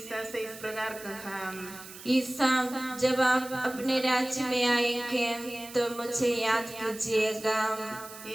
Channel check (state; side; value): noise; right; hiss, 15 dB below the sound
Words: से इस प्रकार कहा, ईसा, जब आप अपने राज्य में आएंगे तो मुझे याद कीजिएगा।